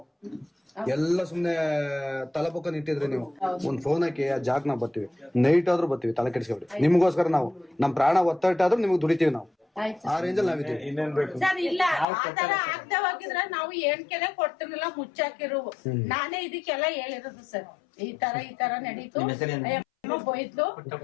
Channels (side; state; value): right; drops out; at 12.1 s